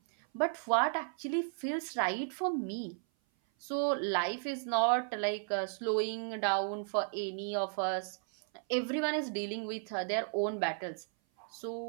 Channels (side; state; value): left; silent; 55 dB below the other